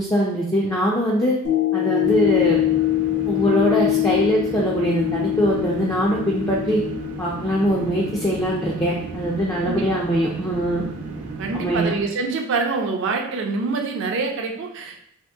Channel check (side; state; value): both; normal; correlation 0.46